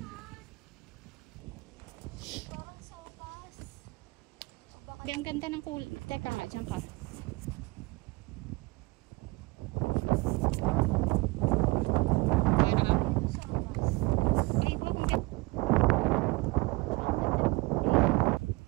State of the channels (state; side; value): quieter; left; 24.3 dB